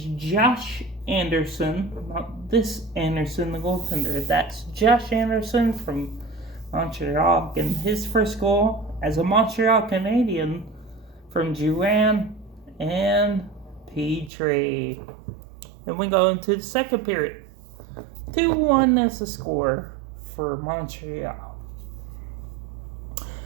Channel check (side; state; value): left; drops out; at 14.3 s